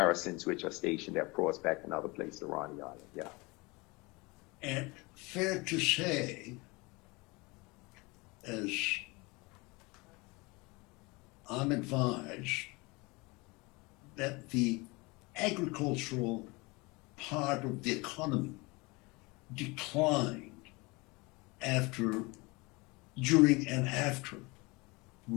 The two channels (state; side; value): quieter; right; 25.4 dB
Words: which are stationed at Prospect and other places around the island. Yeah. And fair to say, as I'm advised, that the agricultural part of the economy declined during and after